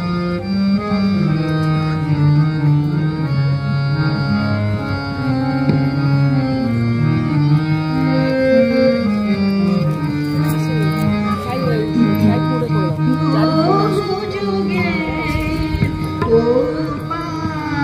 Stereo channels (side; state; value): both; identical; correlation 1.00